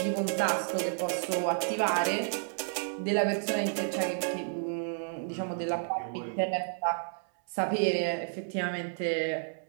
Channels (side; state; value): left; silent; 57 dB below the other